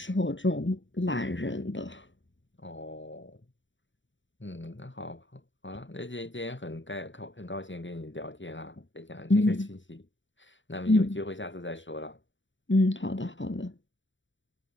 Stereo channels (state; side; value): late; right; 0.55 ms